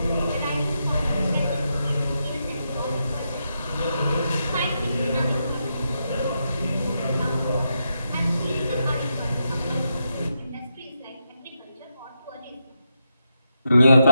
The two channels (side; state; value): both; inverted; correlation -0.84